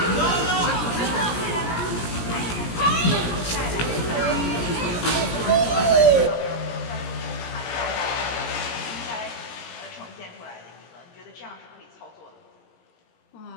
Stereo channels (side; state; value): right; late; 17 ms